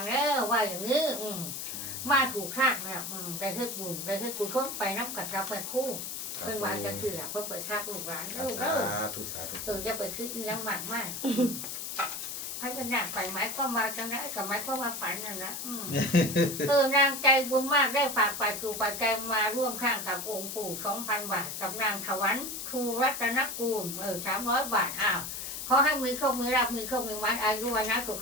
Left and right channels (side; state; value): left; noise; hiss, 6 dB below the sound